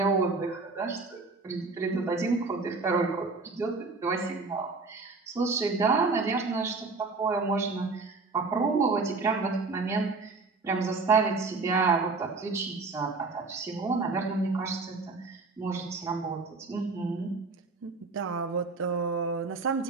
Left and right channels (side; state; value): left; quieter; 3.9 dB